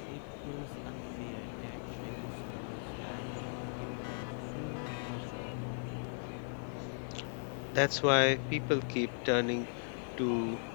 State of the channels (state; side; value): silent; right; digital silence